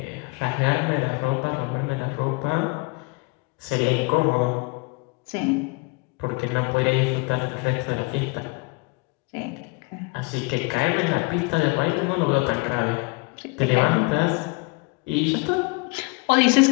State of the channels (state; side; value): quieter; right; 28.9 dB